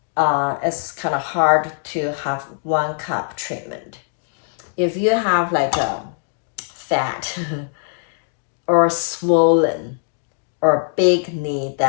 It's kind of hard to have one cup treatment. If you have like a fat or swollen or big knee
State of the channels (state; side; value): silent; right; digital silence